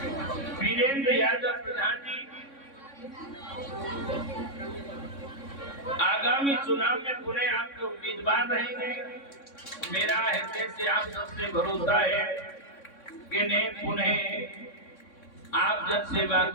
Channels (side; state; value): right; late; 3.6 ms